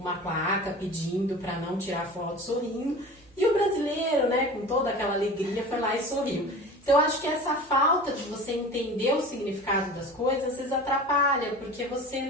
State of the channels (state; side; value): noise; right; hum, 30 dB below the sound